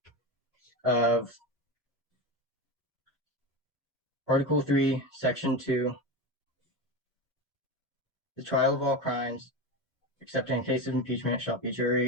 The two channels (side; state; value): both; normal; correlation 0.21